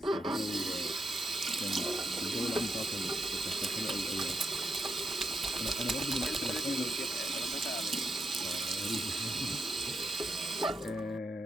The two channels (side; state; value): both; normal; correlation 0.83